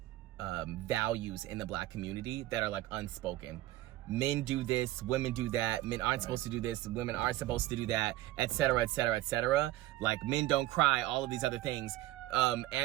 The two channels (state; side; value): quieter; left; 16.1 dB